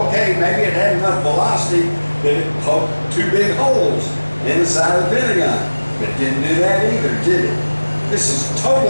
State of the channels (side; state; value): both; inverted; correlation -1.00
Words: maybe it had enough velocity that it poked 2 big holes in the side of the Pentagon. But it didn't do that either, did it? This is